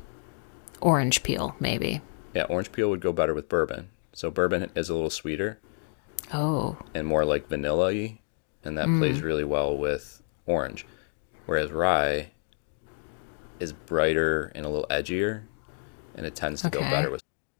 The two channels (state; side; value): silent; right; digital silence